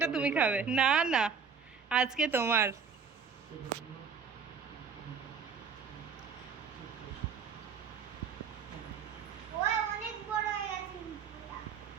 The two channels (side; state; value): left; quieter; 6.2 dB